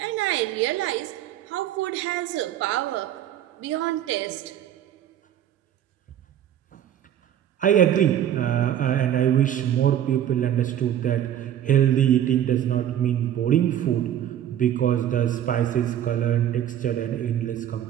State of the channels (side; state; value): left; quieter; 10.7 dB